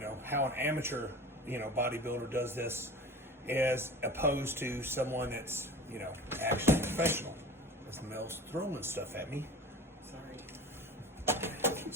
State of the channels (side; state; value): both; normal; correlation 0.37